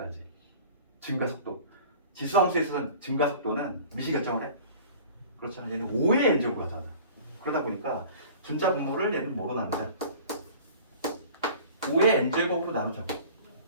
증가 속도. 지수함수에서는 증가 속도는 미시 결정을 해. 그렇잖아. 얘는 5의 n제곱으로 하잖아. 그러다 보니까 분자 분모를 얘는 뭐로 나누자? 5의 n제곱으로 나누자고.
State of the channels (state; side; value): inverted; both; correlation -0.44